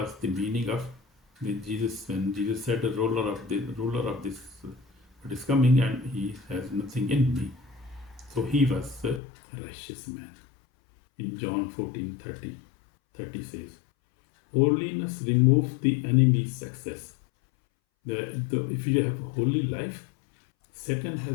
the meaning of Jesus when Jesus said the ruler of this what is coming, and he has nothing in me. So he was a righteous man. In John 14:30 says, holiness removes the enemy's success. If you have a holy life, Satan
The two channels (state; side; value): drops out; right; at 9.2 s